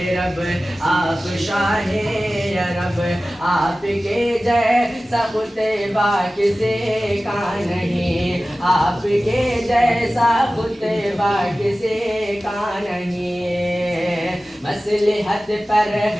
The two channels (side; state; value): both; normal; correlation 0.96